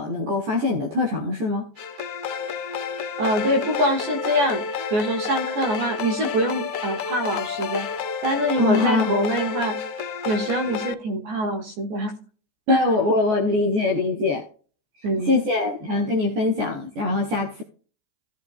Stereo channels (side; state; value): left; late; 14 ms